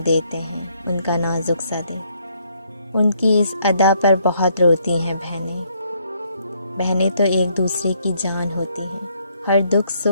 देते हैं उनका नाजुक सा दिल, उनकी इस अदा पर बहुत रोती हैं बहनें। बहनें तो एक दूसरे की जान होती हैं, हर दुख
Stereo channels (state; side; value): inverted; both; correlation -0.70